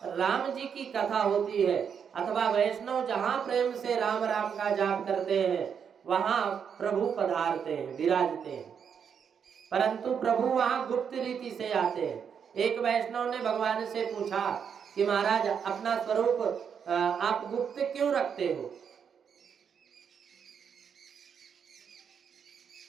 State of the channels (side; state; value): left; quieter; 7.3 dB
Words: राम जी की कथा होती है अथवा वैष्णव जहां प्रेम से राम राम का जाप करते हैं वहां प्रभु पधारते हैं, विराजते हैं। परंतु प्रभु वहां गुप्त रीति से आते हैं। एक वैष्णव ने भगवान से पूछा कि महाराज अपना स्वरूप आप गुप्त क्यों रखते हो?